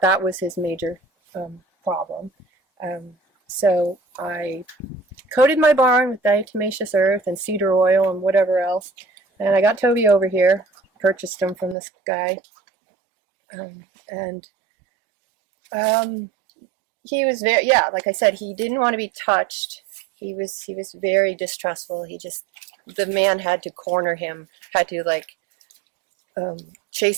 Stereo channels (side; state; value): left; drops out; at 11.8 s